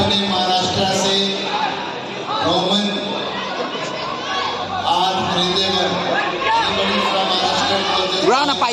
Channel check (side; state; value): both; identical; correlation 1.00